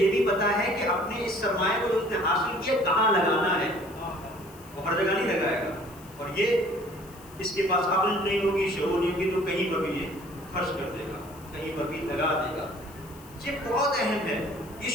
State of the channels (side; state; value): left; noise; hiss, 22 dB below the sound